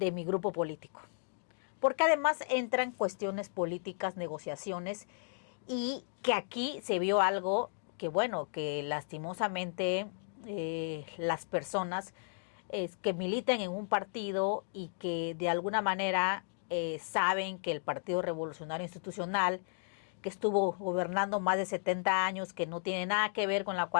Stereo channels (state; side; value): silent; right; digital silence